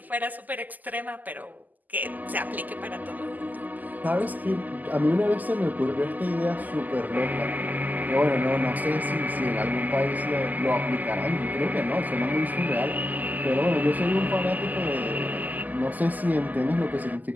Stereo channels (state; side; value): late; left; 0.082 ms